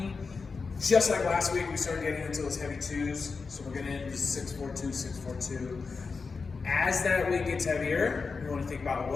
Just like last week, we started getting into those heavy twos. So we're getting into 642, 642. As that weight gets heavier, we want to think about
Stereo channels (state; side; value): quieter; right; 4.7 dB